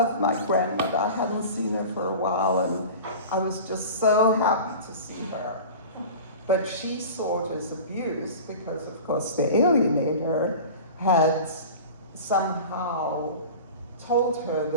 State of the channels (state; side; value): inverted; both; correlation -0.36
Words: my grandmother. I hadn't seen her for a while, and I was just so happy to see her. But she saw it as abuse because, of course, the alienator had somehow told her